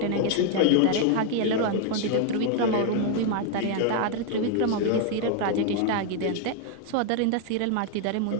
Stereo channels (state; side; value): different; both; correlation 0.01